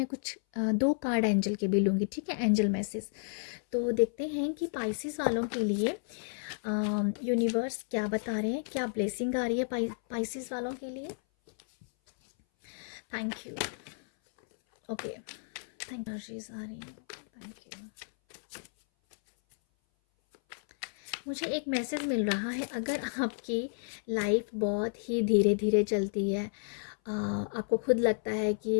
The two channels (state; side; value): silent; right; 57 dB below the other